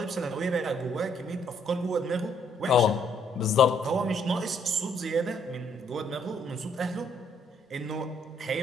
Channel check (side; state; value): both; normal; correlation 0.68